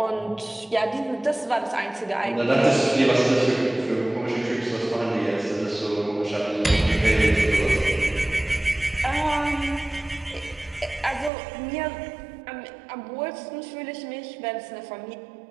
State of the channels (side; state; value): left; drops out; at 11.3 s